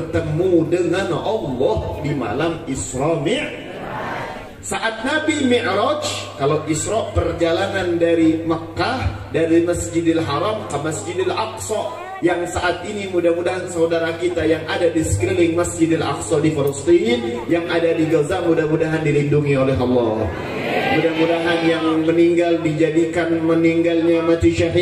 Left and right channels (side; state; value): both; identical; correlation 1.00